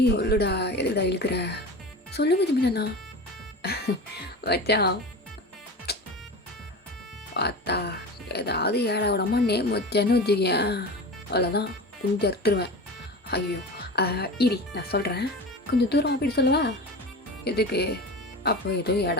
சொல்லுடா, எதுடா இழுக்கிற? சொல்லுங்க ஜிமினா. மச்சான் பார்த்தா ஏதாவது ஏழை விடமா நேம் வச்சேன்னு வச்சுக்கேன், அவ்வளோதான் கொஞ்சம் அறுத்துருவேன். ஐயோ இரி நான் சொல்கிறேன், கொஞ்சம் தூரம் போயிட்டு சொல்லவா? எதுக்கு? அப்போ ஏதோ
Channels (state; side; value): normal; both; correlation 0.31